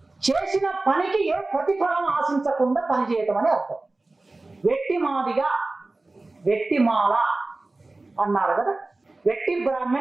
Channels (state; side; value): quieter; left; 3.1 dB